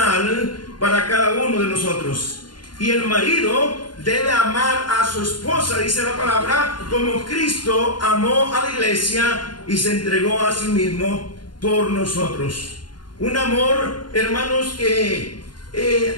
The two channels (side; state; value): right; late; 0.71 ms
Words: para cada uno de nosotros. Y el marido debe amar a su esposa, dice la palabra, como Cristo amó a la iglesia y se entregó a sí mismo por nosotros. Un amor, hermanos, que